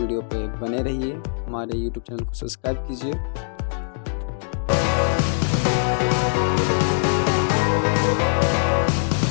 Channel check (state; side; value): silent; right; digital silence